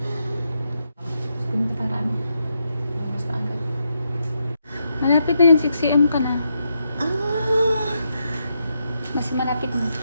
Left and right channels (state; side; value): inverted; both; correlation -0.81